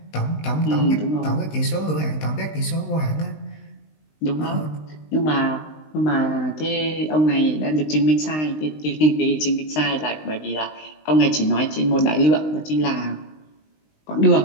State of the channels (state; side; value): late; right; 19 ms